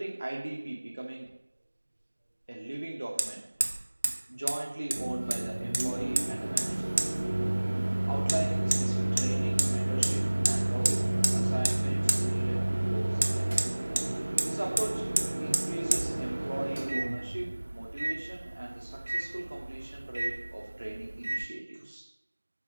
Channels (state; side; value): inverted; both; correlation -1.00